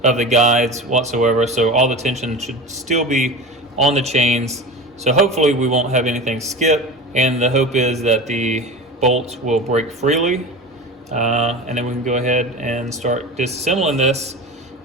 of the guides whatsoever, so all the tension should still be on the chains. So hopefully we won't have anything skip, and the hope is that the bolts will break freely, and then we can go ahead and start disassembling this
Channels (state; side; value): normal; both; correlation 0.31